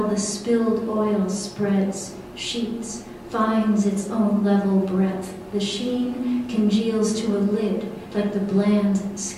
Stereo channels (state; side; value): identical; both; correlation 1.00